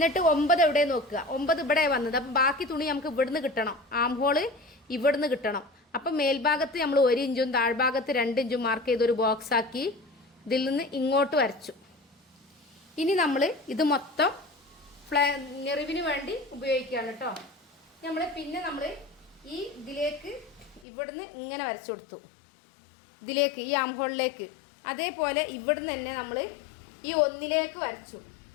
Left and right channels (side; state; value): right; drops out; at 20.9 s